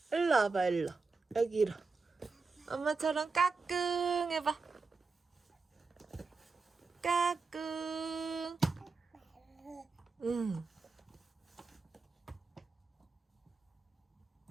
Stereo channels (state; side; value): quieter; left; 4.3 dB